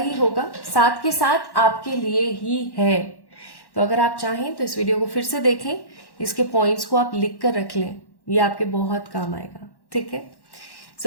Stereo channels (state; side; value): late; right; 1.1 ms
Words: होगा, साथ के साथ आपके लिए ही है। तो अगर आप चाहें तो इस वीडियो को फिर से देखें, इसके पॉइंट्स को आप लिख कर रख लें, ये आपके बहुत काम आएगा, ठीक है।